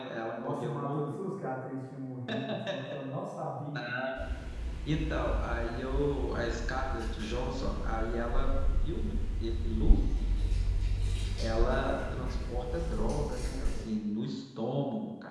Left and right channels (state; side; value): identical; both; correlation 1.00